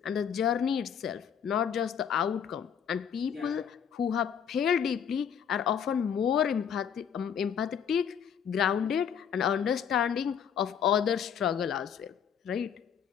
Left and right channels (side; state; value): right; quieter; 8.0 dB